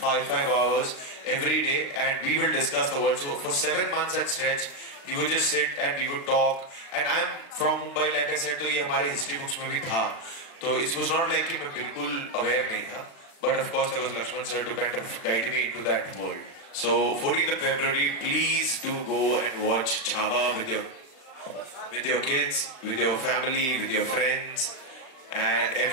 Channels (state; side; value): late; right; 36 ms